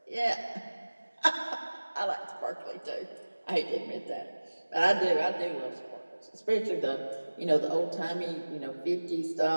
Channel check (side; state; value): both; inverted; correlation -1.00